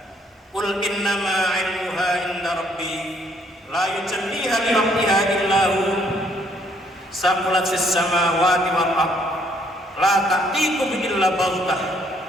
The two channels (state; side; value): normal; both; correlation 0.66